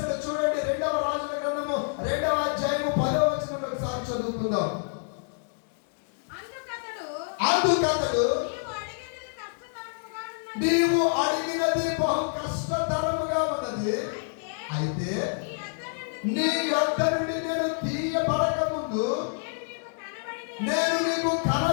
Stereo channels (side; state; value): right; silent; digital silence